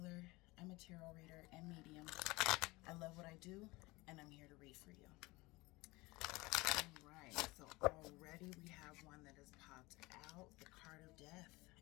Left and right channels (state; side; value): quieter; right; 22.3 dB